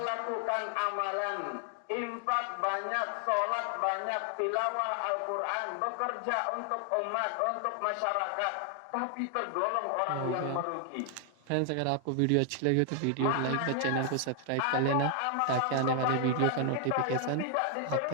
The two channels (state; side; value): different; both; correlation 0.00